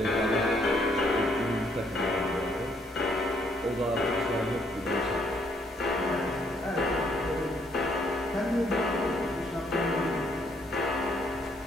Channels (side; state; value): both; normal; correlation 0.69